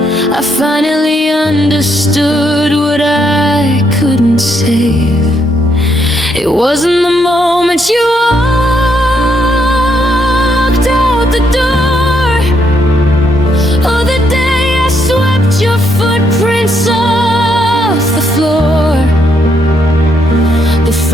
I finally understood what I couldn't save. It wasn't the moment you walked out the door, or the day I swept your footprints off the floor. The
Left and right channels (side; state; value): both; normal; correlation 0.75